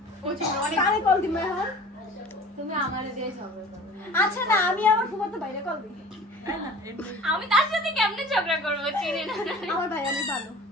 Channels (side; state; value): both; normal; correlation 0.43